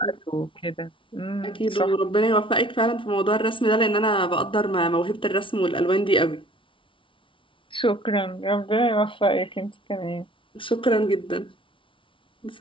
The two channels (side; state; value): right; late; 0.25 ms